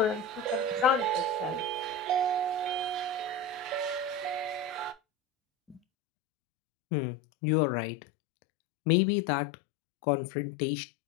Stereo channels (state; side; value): drops out; right; at 5.8 s